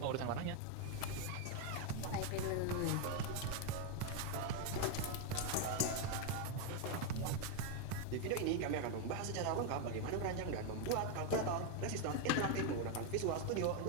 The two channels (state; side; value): different; both; correlation 0.01